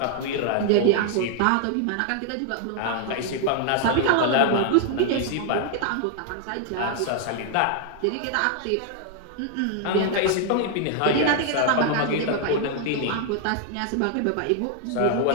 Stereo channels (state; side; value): different; both; correlation 0.00